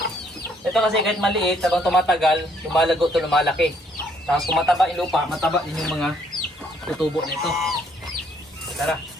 Ito kasi kahit maliit, habang tumatagal, lumalago to, lumalaki. Tapos kung mataba yung lupa, mataba din yung mga tutubo nito. Tara.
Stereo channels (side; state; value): both; normal; correlation 0.67